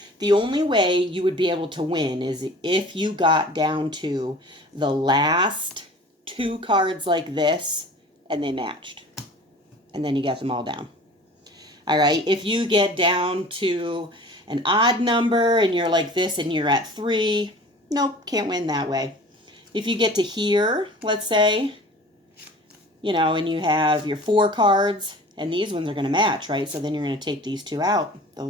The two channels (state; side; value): normal; both; correlation 0.43